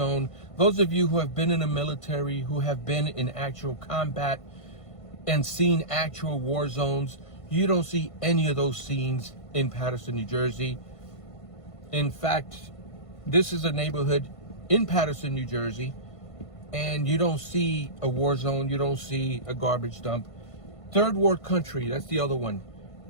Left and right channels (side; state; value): right; late; 1.5 ms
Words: those of you who have been in the military, who have been in actual combat and seen actual war zones, you don't see any of those scenes in Paterson, New Jersey. In fact, this is a neighborhood in Paterson, New Jersey, and you don't see a war zone, you don't see a garbage dump. Third world country, that's the other one.